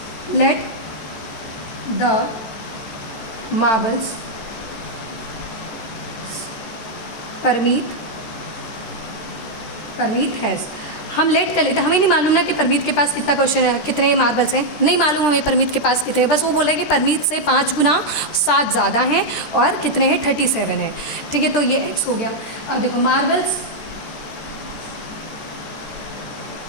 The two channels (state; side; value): late; right; 13 ms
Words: let the marbles Parmeet has, हम लेट कर लेते हैं, हमें नहीं मालूम ना कि परमीत के पास कितना क्वेश्चन है, कितने मार्बल्स हैं, नहीं मालूम हमें परमीत के पास कितने हैं। बस वो बोला है कि परमीत से 5 गुना 7 ज़्यादा हैं और कितने हैं, 37 हैं। ठीक है, तो ये x हो गया। अब देखो मार्बल्स